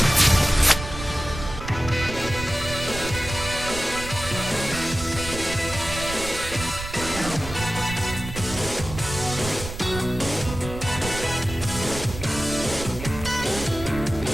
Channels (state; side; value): noise; right; rumble, 9 dB below the sound